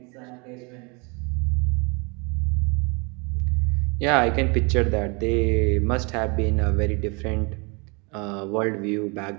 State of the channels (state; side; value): quieter; left; 30.6 dB